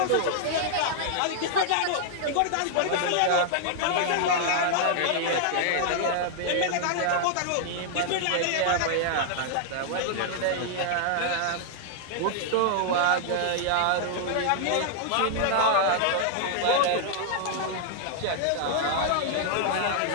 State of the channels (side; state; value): both; different; correlation -0.01